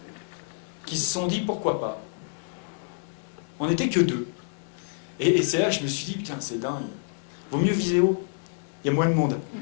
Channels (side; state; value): right; silent; digital silence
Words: qui se sont dit, pourquoi pas? On n'était que 2. Et c'est là que je me suis dit, putain, c'est dingue. Vaut mieux viser haut. Il y a moins de monde.